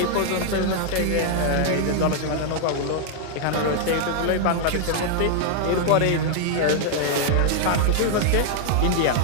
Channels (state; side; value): different; both; correlation -0.01